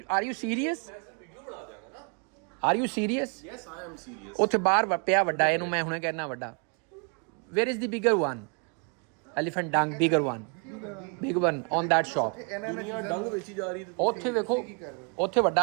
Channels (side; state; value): left; quieter; 36.8 dB